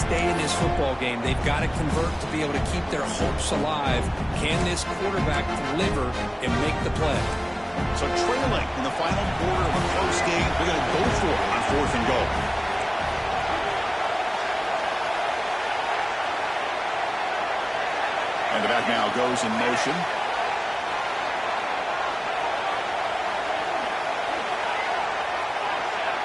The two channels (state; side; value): identical; both; correlation 1.00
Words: in this football game. They've got to convert to be able to keep their hopes alive. Can this quarterback deliver and make the play? So trailing in the final quarter of a close game, they're going to go for it on 4th and goal. And the back now goes in motion.